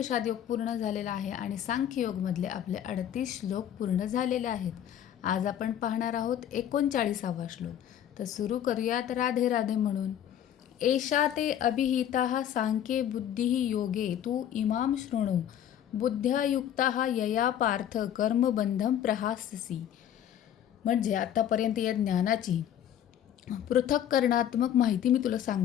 योग पूर्ण झालेला आहे आणि सांख्य योगमधले आपले 38 श्लोक पूर्ण झालेले आहेत. आज आपण पाहणार आहोत 39वा श्लोक. तर सुरू करूयात राधे राधे म्हणून. एषा ते अभिहिता सांख्ये बुद्धिः योगे तू इमाम शृणु बुद्ध्या युक्ता यया पार्थ कर्मबंधम प्रहास्यसि. म्हणजे आतापर्यंत या ज्ञानाची पृथक्करणात्मक माहिती मी तुला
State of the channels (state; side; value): quieter; right; 10.3 dB